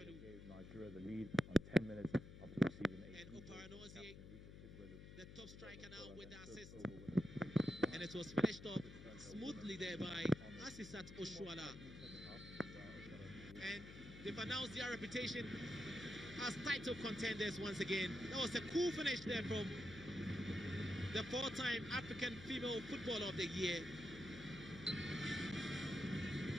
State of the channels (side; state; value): left; noise; hum, 13 dB below the sound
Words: Gave Nigeria the lead on 10 minutes after receiving a and Oparanozie, the top striker now with the assist. And it was finished off smoothly there by Asisat Oshuala. And they've announced their reputation as title contenders once again. That was a cool finish there from the 4-time African Female Footballer of the Year.